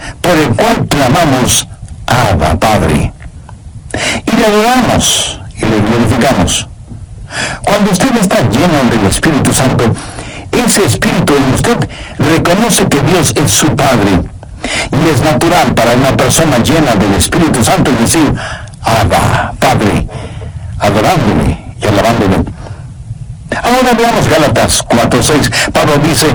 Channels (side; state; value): both; identical; correlation 1.00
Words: Por el cual clamamos, Abba, Padre. Y le adoramos y le glorificamos. Cuando usted está lleno del Espíritu Santo, ese Espíritu en usted reconoce que Dios es su Padre. Y es natural para una persona llena del Espíritu Santo decir, Abba, Padre, adorándole y alabándole. Ahora veamos Gálatas 4:6. Pablo